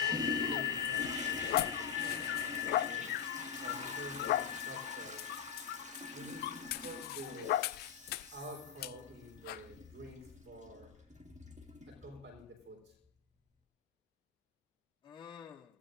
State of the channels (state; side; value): quieter; right; 8.3 dB